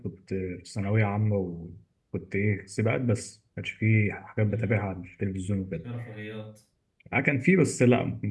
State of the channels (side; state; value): both; identical; correlation 1.00